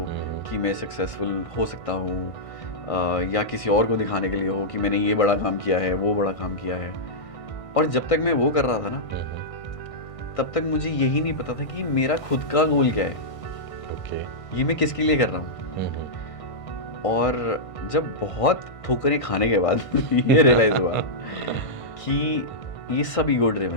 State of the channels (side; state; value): right; late; 1.6 ms